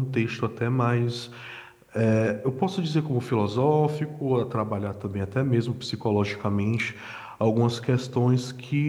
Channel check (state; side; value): identical; both; correlation 1.00